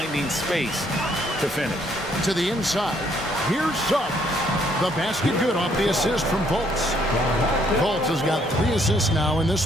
space to finish. To the inside. Here's Suggs. The basket good off the assist from Fultz. Fultz has got 3 assists now in this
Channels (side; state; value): both; normal; correlation 0.68